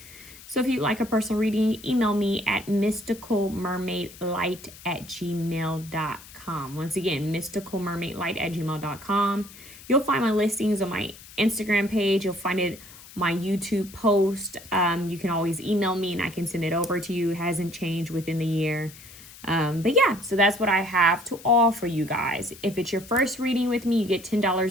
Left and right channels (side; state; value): left; noise; hiss, 19 dB below the sound